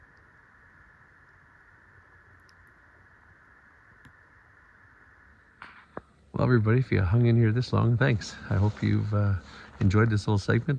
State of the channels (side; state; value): both; identical; correlation 1.00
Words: Well, everybody, if you hung in here this long, thanks. I hope you've enjoyed this little